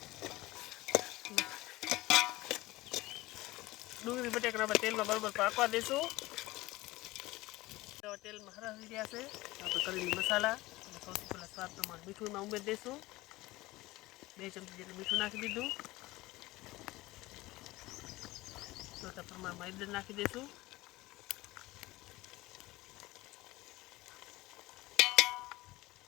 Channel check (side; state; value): right; quieter; 19.4 dB